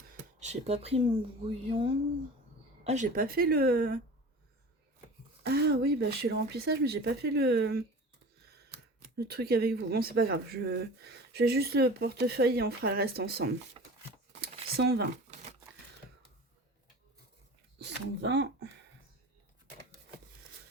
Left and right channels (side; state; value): both; normal; correlation 0.38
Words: j'ai pas pris mon brouillon. Ah, j'ai pas fait le... Ah oui, bah je fais le remplissage, mais j'ai pas fait le truc avec vous. Bon, c'est pas grave. Je vais juste le portefeuille et on fera le reste ensemble. 120. 120.